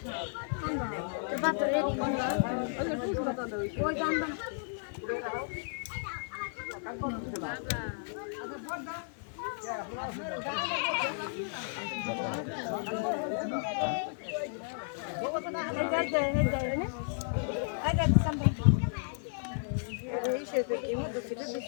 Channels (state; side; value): silent; right; digital silence